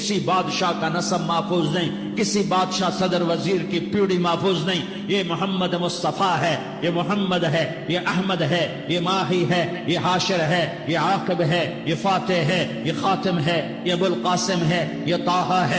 بادشاہ کا نسب محفوظ نہیں، کسی بادشاہ صدر وزیر کی پیڑھی محفوظ نہیں۔ یہ محمد مصطفیٰ ہے، یہ محمد ہے، یہ احمد ہے، یہ ماہی ہے، یہ حاشر ہے، یہ عاقب ہے، یہ فاتح ہے، یہ خاتم ہے، یہ ابو القاسم ہے، یہ طٰہٰ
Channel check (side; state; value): both; identical; correlation 1.00